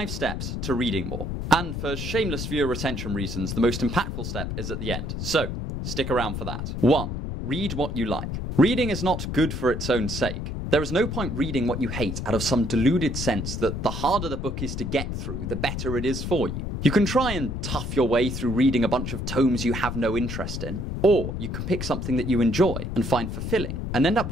steps to reading more. And for shameless viewer retention reasons, the most impactful step is at the end. So, stick around for that. 1. Read what you like. Reading is not good for its own sake. There is no point reading what you hate out of some deluded sense that the harder the book is to get through, the better it is for you. You can try and tough your way through reading a bunch of tomes you have no interest in, or you can pick something that you enjoy and find fulfilling, and end up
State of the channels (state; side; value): noise; left; rumble, 4 dB below the sound